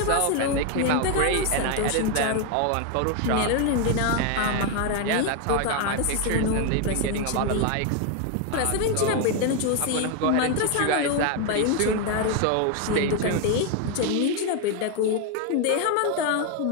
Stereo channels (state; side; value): different; both; correlation 0.01